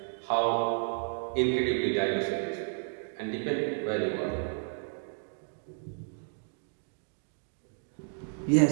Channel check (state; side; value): silent; left; 56 dB below the other